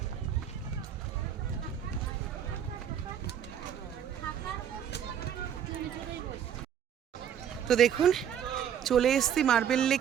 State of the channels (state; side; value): quieter; left; 9.0 dB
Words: তো দেখুন চলে এসছি মার্বেল